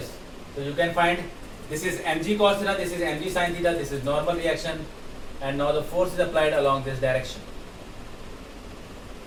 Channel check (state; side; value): identical; both; correlation 1.00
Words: So you can find this is mg cos theta. This is mg sin theta. This is normal reaction, and now the force is applied along this direction.